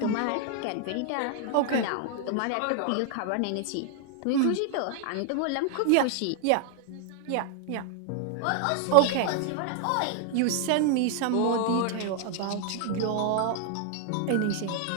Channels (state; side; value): different; both; correlation 0.00